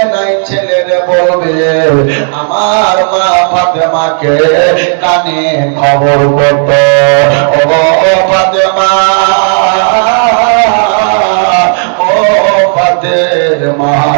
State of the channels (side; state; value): left; silent; digital silence